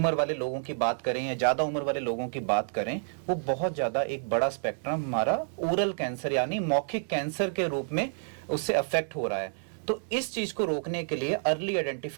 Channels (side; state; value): left; silent; digital silence